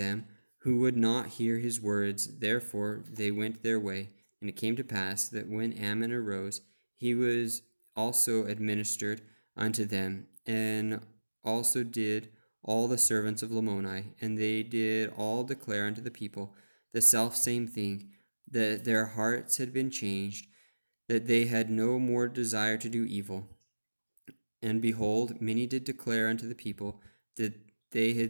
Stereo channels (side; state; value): both; inverted; correlation -1.00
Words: who would not hear his words. Therefore they went their way, And it came to pass that when Ammon arose, he was also administered unto them, and also did all the servants of Lamoni, and they did all declare unto the people the selfsame thing, that their hearts had been changed, that they had no more desire to do evil. And behold, many did declare unto the people that they